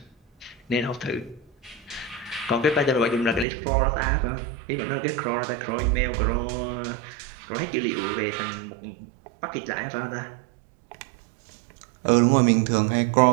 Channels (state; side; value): drops out; left; at 3.5 s